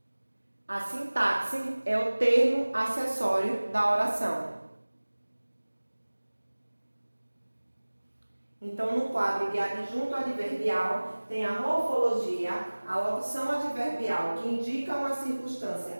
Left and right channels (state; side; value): inverted; both; correlation -1.00